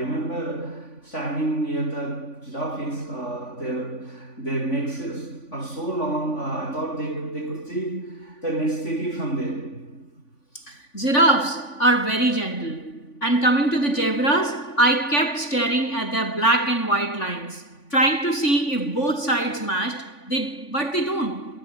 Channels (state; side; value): late; right; 3.5 ms